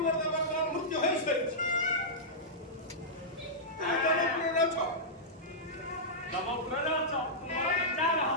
ତ ବର୍ତ୍ତମାନ ମୃତ୍ୟୁ ହୋଇସାରିଛି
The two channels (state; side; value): normal; both; correlation -0.12